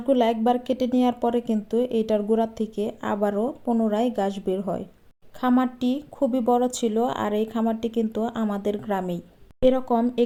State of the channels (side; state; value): both; identical; correlation 1.00